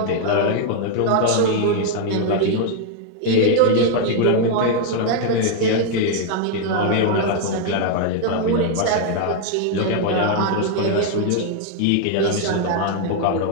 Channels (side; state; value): both; different; correlation 0.00